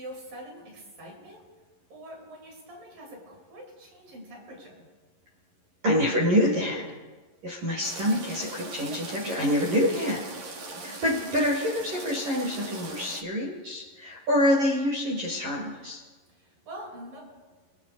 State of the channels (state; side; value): late; left; 11 ms